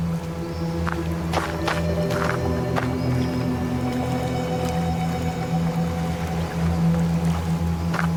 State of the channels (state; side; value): identical; both; correlation 1.00